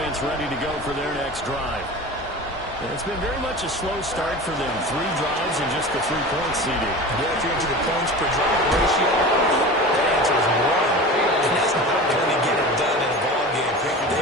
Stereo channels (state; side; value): normal; both; correlation 0.33